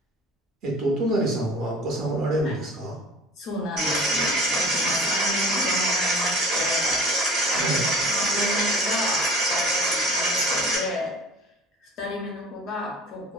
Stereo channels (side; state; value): both; normal; correlation 0.43